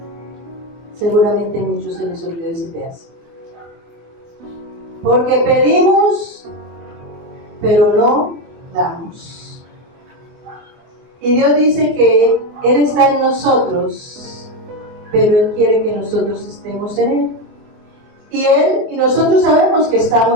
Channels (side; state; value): left; late; 24 ms